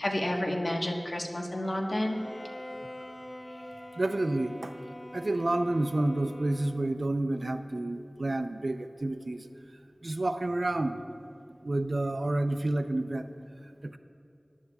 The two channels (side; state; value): both; normal; correlation 0.98